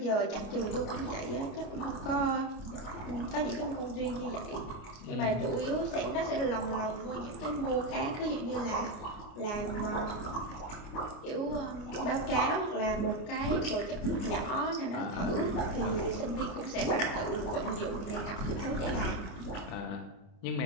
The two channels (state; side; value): late; right; 29 ms